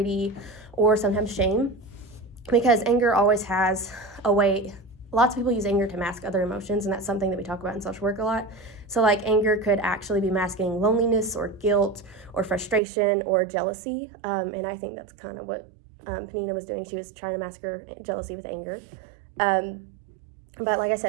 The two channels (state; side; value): drops out; left; at 12.8 s